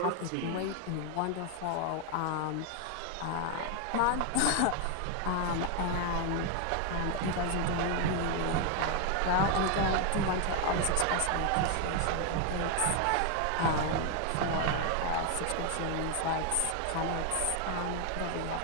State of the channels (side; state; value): both; different; correlation 0.01